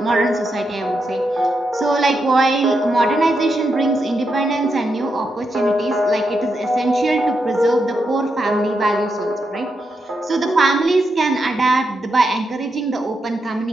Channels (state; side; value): normal; both; correlation 0.84